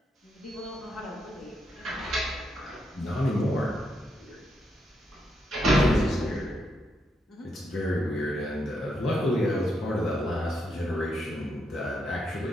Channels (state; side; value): normal; both; correlation 0.80